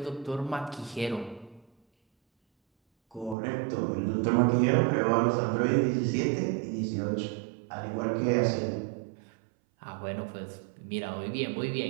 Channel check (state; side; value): drops out; left; at 3.4 s